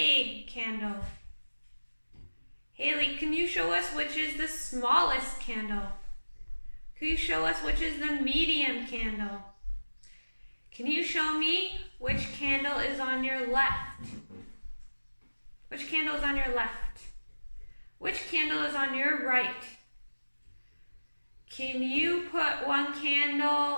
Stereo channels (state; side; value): inverted; both; correlation -1.00